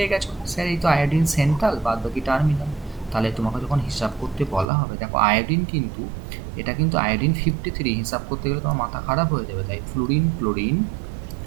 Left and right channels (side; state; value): left; drops out; at 4.7 s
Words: গেছো, স্যার এই তো আয়োডিন সেন্ট্রাল, বাদ বাকি টার্মিনাল। তাহলে তোমাকে যখন হিসাব করতে বলা হবে, দেখো আয়োডিন কিন্তু, এটা কিন্তু আয়োডিন 53, হিসাব করতে গেলে তোমার মাথা খারাপ হয়ে যাবে। তাই fluorine, chlorine,